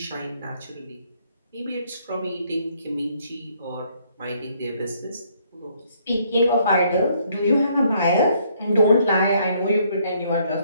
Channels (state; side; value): inverted; both; correlation -0.68